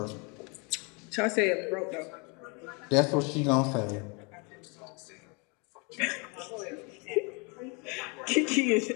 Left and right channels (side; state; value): right; quieter; 31.7 dB